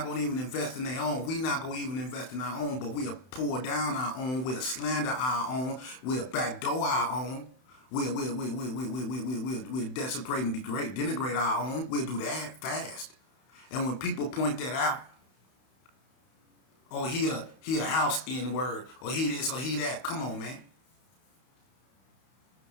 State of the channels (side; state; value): right; late; 31 ms